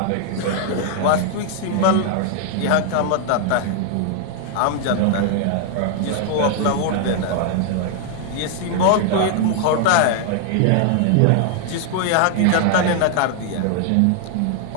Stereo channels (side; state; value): both; different; correlation 0.00